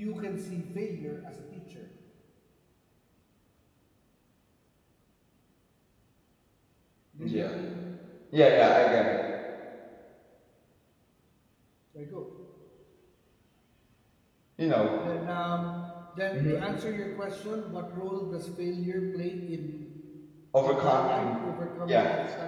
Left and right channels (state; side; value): identical; both; correlation 1.00